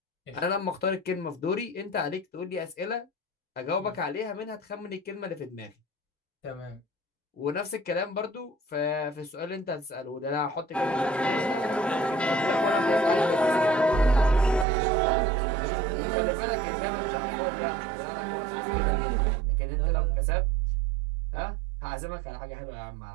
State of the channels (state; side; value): drops out; left; at 14.7 s